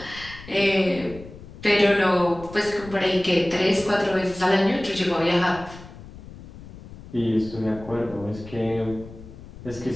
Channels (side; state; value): left; noise; rumble, 16 dB below the sound